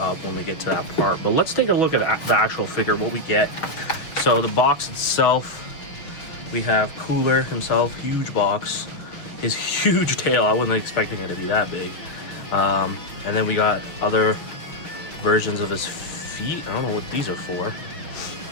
when we get to that part. But let's take a look at the actual figure, what we get. So the box itself, we have Cooler himself, huge box. His huge tail, I wasn't expecting it to be that big. And then we got other versions of his feet. I don't know what these are for.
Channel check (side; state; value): right; late; 6.0 ms